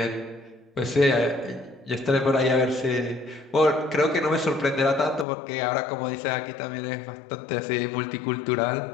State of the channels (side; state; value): right; drops out; at 5.2 s